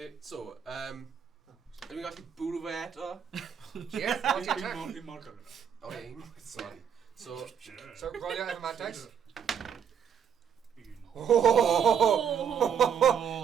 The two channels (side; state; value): left; quieter; 7.9 dB